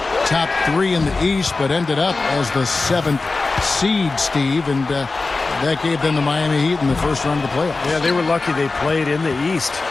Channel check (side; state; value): right; quieter; 3.7 dB